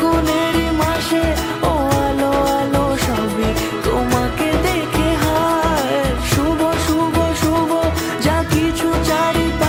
মাসে, ও আলো আলো সবই তোমাকে দেখে হায়। শুভ শুভ শুভ যা কিছু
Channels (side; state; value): both; identical; correlation 1.00